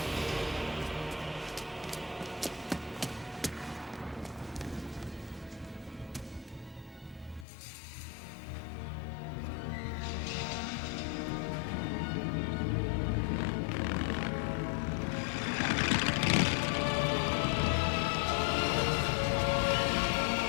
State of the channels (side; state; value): right; drops out; at 7.5 s